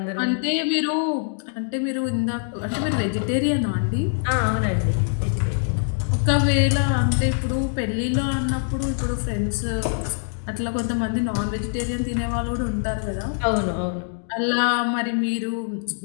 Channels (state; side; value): silent; right; digital silence